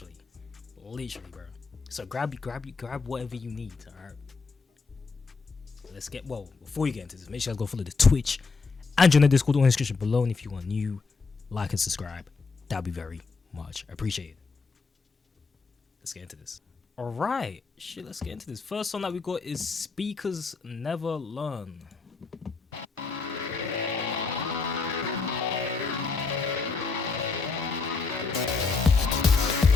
bro. So grab whatever you need, alright? Let's get, well, before you get into this, make sure you guys go follow the Twitch and join the Discord in the description below, and if you are new, like and subscribe. That'd be very much appreciated. Let's get into this. Alright, shit, let's get into this. First song that we got is Speakers Never Learn.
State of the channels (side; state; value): right; quieter; 4.5 dB